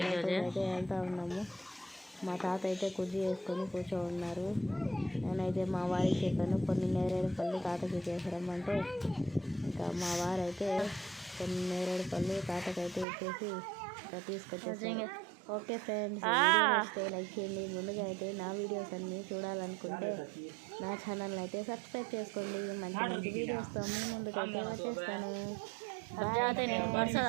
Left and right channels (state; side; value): drops out; left; at 13.1 s